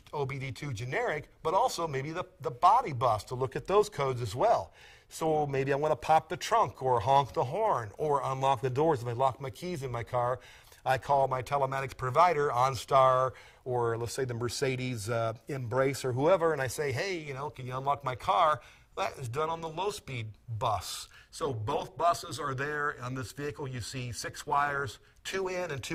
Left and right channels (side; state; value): both; identical; correlation 1.00